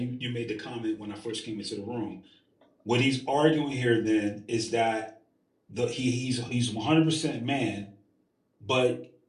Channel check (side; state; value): both; identical; correlation 1.00